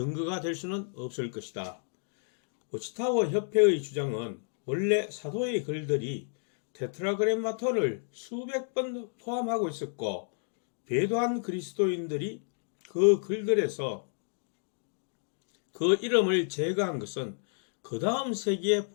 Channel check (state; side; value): silent; right; digital silence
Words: 될 수는 없을 것이다. 워치타워 협회의 주장은 원래 사도의 글들이 테트라그램마톤을 수백 번 포함하고 있었고 배도한 그리스도인들이 그 글들에서 그 이름을 제거한 것은 그 다음 세기에